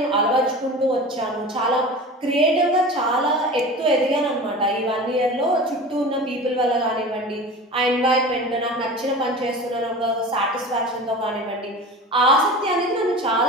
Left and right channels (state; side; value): normal; both; correlation 0.34